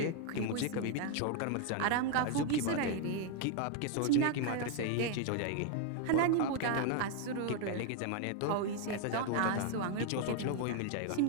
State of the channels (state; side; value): different; both; correlation 0.00